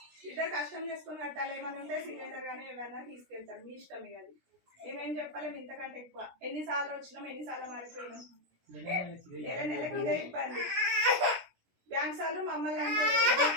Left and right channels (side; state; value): left; late; 17 ms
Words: ఇద్దరు కష్టం చేసుకొని కట్టాలి. ఏమైనా ఉంటే సిలిండర్ కానీ ఏమైనా తీసుకెళ్తారు. మీ ఇష్టమే అది. మేమేం చెప్పలేము ఇంతకంటే ఎక్కువ. ఎన్నిసార్లు వచ్చినాం ఎన్నిసార్లు మారిపోయినాం. నెలకి ఇదే ఇబ్బంది. బ్యాంక్ సార్లు మమ్మల్ని అంటే